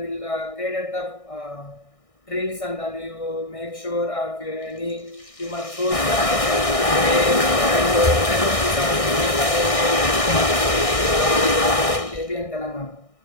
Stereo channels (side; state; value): right; late; 1.6 ms